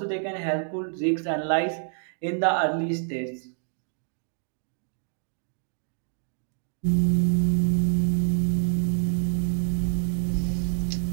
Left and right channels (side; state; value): left; silent; digital silence